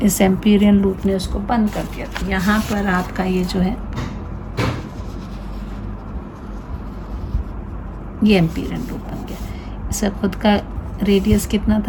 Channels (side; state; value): both; identical; correlation 1.00